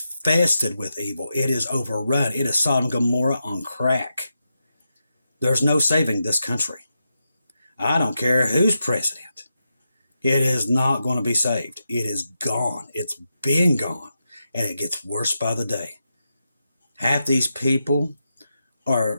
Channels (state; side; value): inverted; both; correlation -0.87